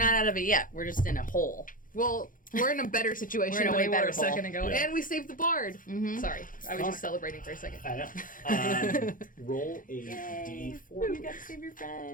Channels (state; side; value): late; right; 0.39 ms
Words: out of it yet. We're just in a hole. Well, we're in a better situation We're in a than way we were better a second ago. Yeah. And we saved the bard. Sorry, I was just celebrating for a second. I know. Roll a d4. You gotta save your